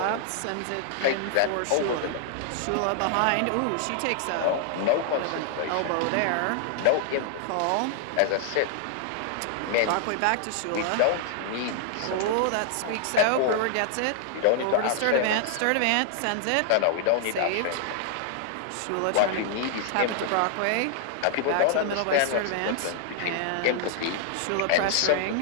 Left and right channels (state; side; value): different; both; correlation -0.01